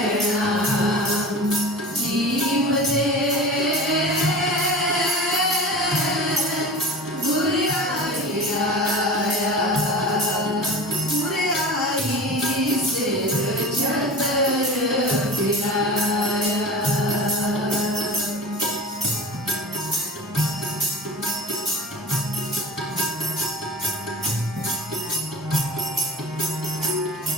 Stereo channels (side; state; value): both; normal; correlation 0.34